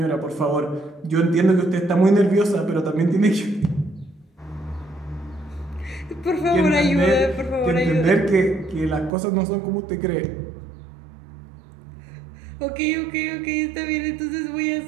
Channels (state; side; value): drops out; left; at 9.1 s